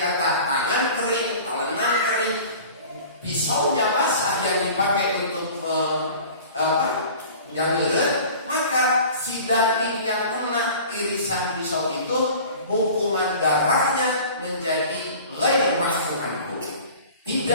tangan kering, talenan kering, pisaunya basah yang dipakai untuk janggelan, maka si daging yang kena irisan pisau itu hukuman darahnya menjadi ghair ma'fu anhu,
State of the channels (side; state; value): both; inverted; correlation -0.42